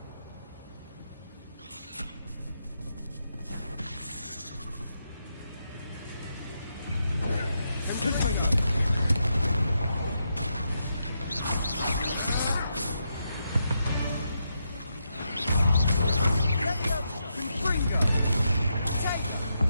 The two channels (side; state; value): both; inverted; correlation -0.83